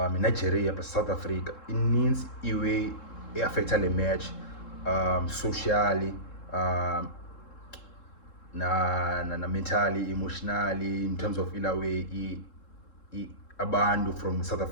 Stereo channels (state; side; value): late; right; 3.7 ms